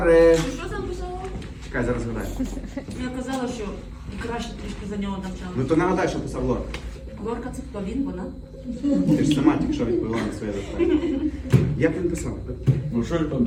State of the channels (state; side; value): identical; both; correlation 1.00